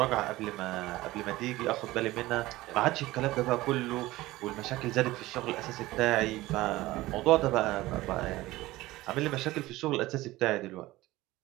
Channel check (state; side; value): quieter; left; 18.1 dB